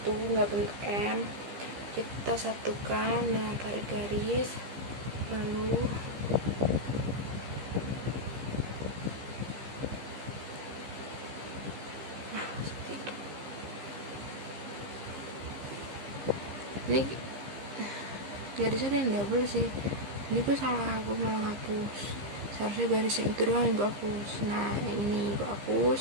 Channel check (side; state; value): left; late; 15 ms